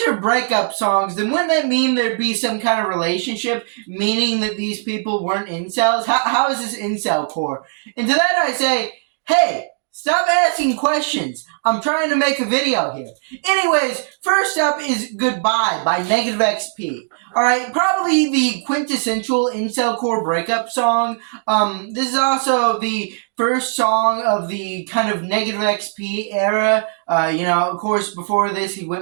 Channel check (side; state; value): left; silent; digital silence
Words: are breakup songs, then wouldn't that mean there'd be some kind of relationship, meaning that these people weren't incels? How is this Incelcore? And to that I say, hey, stop asking questions. I'm trying to make a video here. Anyways, first up is Goodbye by Negative XP. Alright, probably the quintessential Incelcore breakup song. This is also the first song of the kind of Negative XP era. Of course, before this, he